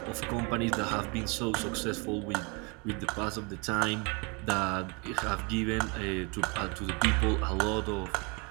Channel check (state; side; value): quieter; left; 30.9 dB